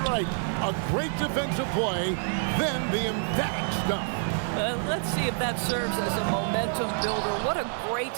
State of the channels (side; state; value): left; silent; digital silence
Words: right. A great defensive play, then the emphatic stuff. Let's see if that serves as a momentum builder. What a great